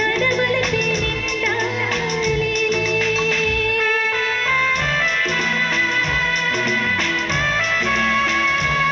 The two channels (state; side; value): identical; both; correlation 1.00